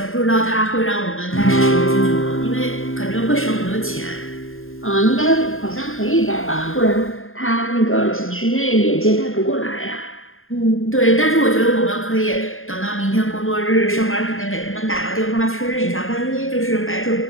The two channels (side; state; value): right; late; 0.60 ms